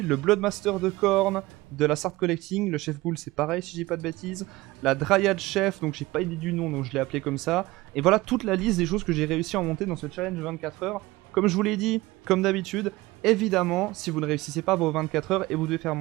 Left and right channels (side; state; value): left; quieter; 19.7 dB